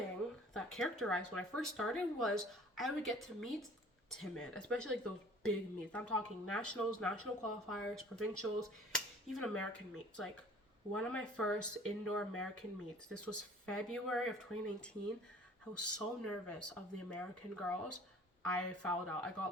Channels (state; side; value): normal; both; correlation 0.50